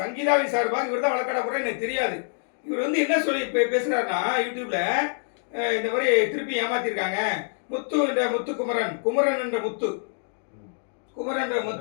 சார்பாக இவர் தான் வழக்காட போறாரு எனக்கு தெரியாது. இவர் வந்து என்ன சொல்லி பேசுறாருன்னா யூடியூப்ல, இந்த மாதிரி திருப்பி ஏமாத்திருக்காங்க, முத்து என்ற முத்துக்குமரன், குமரன் என்ற முத்து, குமரன் என்ற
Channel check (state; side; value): silent; right; digital silence